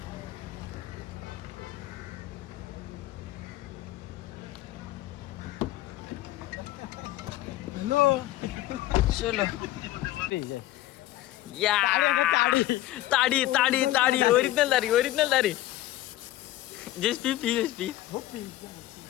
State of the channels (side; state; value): right; quieter; 15.6 dB